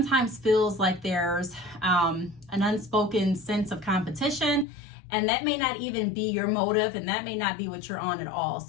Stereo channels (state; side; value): drops out; right; at 4.7 s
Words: feels like there's an unspoken sense of competition, and that may not even be your motive, and that may not be what you're on at all.